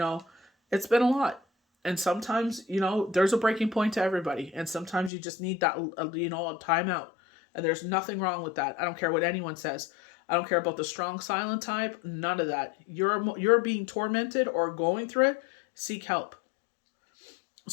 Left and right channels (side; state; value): right; drops out; at 5.1 s